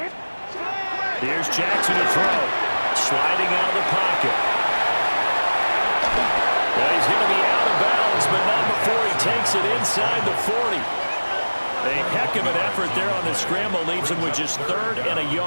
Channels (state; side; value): inverted; both; correlation -1.00